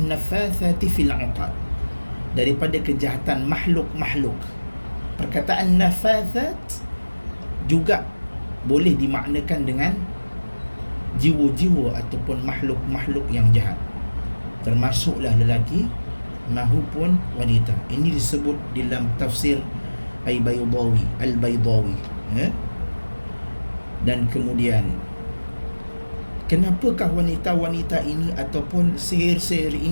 nafathati fil 'uqad, daripada kejahatan makhluk-makhluk. Perkataan nafathat juga boleh dimaknakan dengan jiwa-jiwa ataupun makhluk-makhluk yang jahat, termasuklah lelaki mahupun wanita. Ini disebut dalam tafsir Al-Baydawi. Dan kemudian, kenapakah wanita-wanita ini ataupun sihir-sihir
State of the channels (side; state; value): both; inverted; correlation -1.00